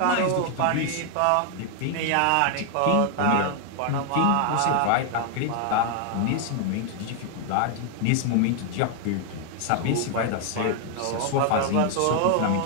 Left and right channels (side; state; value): both; different; correlation 0.00